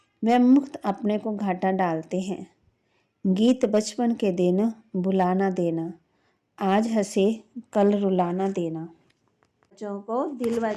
वह मुक्त अपने को घाटा डालते हैं। गीत बचपन के दिन बुलाना देना, आज हंसे कल रुलाना देना। बच्चों को दिल व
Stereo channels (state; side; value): identical; both; correlation 1.00